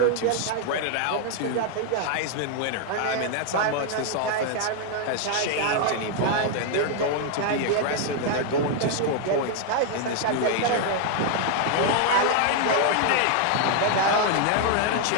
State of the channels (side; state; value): both; different; correlation 0.00